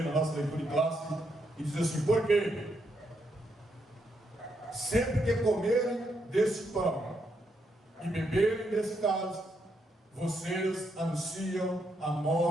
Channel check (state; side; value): normal; both; correlation 0.78